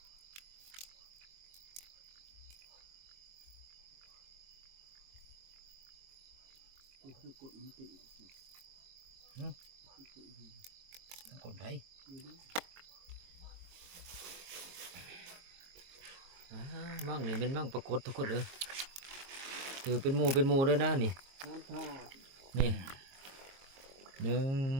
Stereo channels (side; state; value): left; late; 22 ms